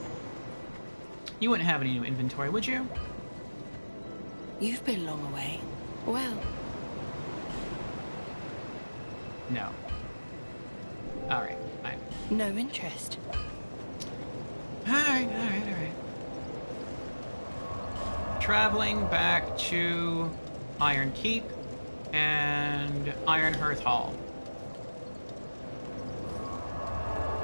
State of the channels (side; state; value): both; inverted; correlation -1.00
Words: You wouldn't have any new inventory, would you? You've been long away. Well... No. Alright, fine. No interest. Alright. Traveling back to Iron Keep and Ironhearth Hall.